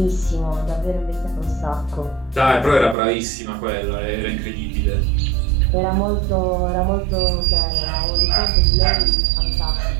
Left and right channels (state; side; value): drops out; left; at 3.0 s